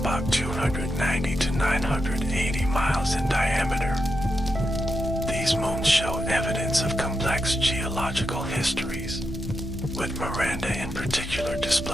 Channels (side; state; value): both; normal; correlation 0.86